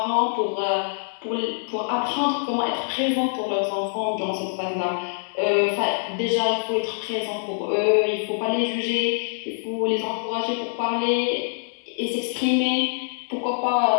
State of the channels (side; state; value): right; silent; digital silence